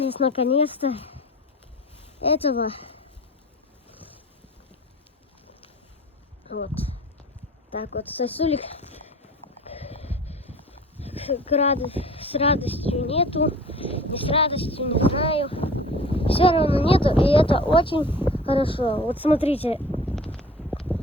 наконец-то этого. Вот. Так вот, сосулек с радостью нету. Не с радостью, не знаю. Все равно нету, и это очень хорошо. Вот смотрите,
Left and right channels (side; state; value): both; normal; correlation 0.41